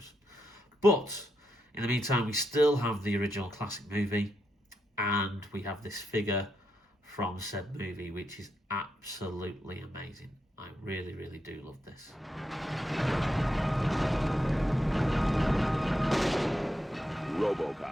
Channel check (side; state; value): both; normal; correlation 0.83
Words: But in the meantime, we still have the original classic movie, and we have this figure from said movie, which is absolutely amazing. I really, really do love this.